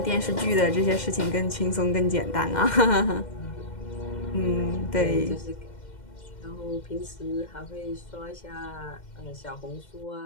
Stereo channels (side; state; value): right; late; 2.1 ms